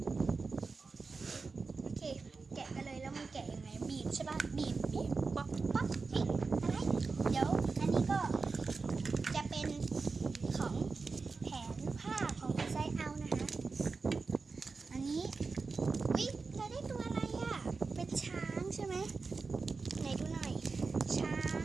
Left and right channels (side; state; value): left; quieter; 4.4 dB